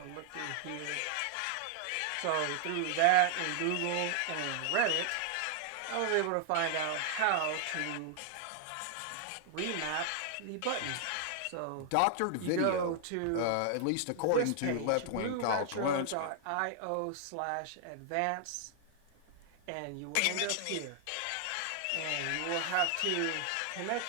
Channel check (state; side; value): different; both; correlation 0.00